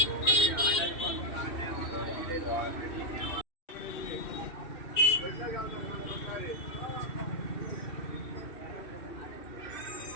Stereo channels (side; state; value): right; late; 2.6 ms